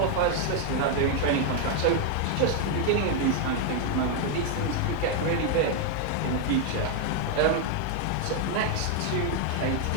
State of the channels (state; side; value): different; both; correlation 0.01